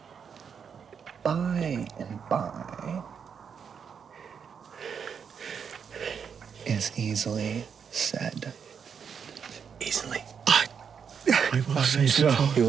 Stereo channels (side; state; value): left; quieter; 6.9 dB